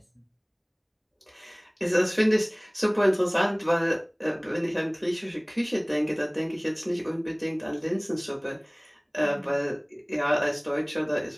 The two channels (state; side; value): identical; both; correlation 1.00